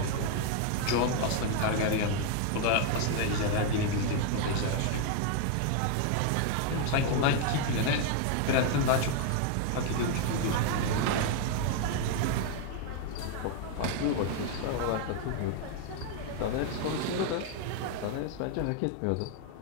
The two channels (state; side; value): different; both; correlation 0.00